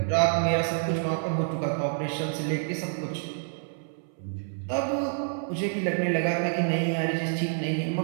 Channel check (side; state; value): left; silent; 59 dB below the other